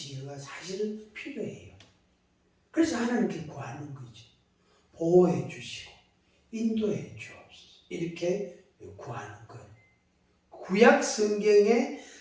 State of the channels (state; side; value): identical; both; correlation 1.00